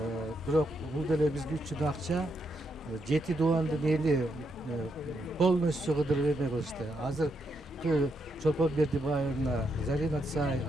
Бирок бул деле бизге үчүн акча. 7 дубандын эли полностью кыдырып эме кылышты. Азыр Чолпон Бердибаевна, Зарина Цай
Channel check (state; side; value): normal; both; correlation 0.79